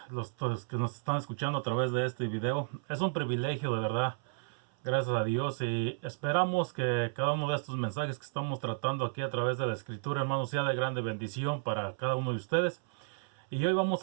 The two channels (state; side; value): silent; left; 56 dB below the other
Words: los que nos están escuchando a través de este video. Es un privilegio, de verdad, gracias a Dios, y esperamos que cada uno de estos mensajes que estamos tratando aquí a través de la Escritura, hermanos, sea de grande bendición para cada uno de ustedes. Y hoy vamos